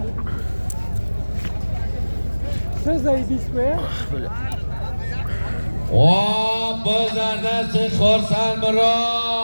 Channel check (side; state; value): both; inverted; correlation -1.00